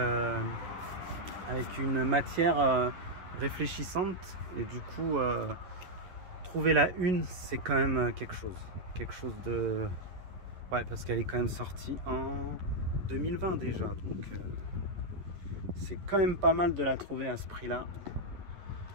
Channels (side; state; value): left; late; 11 ms